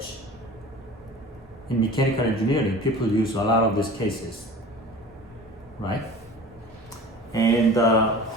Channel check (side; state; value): both; normal; correlation 0.39